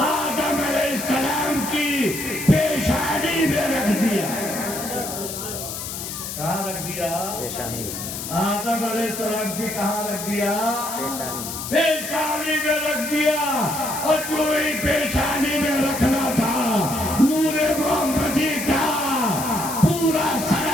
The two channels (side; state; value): left; noise; hiss, 7 dB below the sound